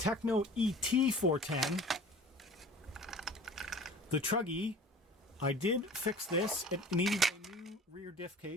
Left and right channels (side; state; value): both; normal; correlation 0.44